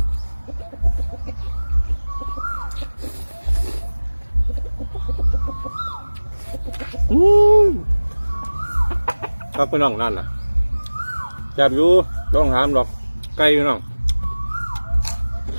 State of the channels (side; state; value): both; inverted; correlation -1.00